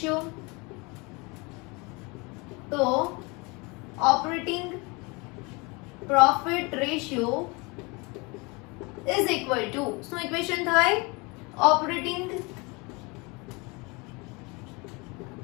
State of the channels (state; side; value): quieter; right; 27.5 dB